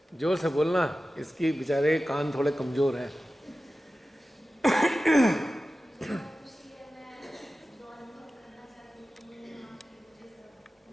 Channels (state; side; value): normal; both; correlation 0.94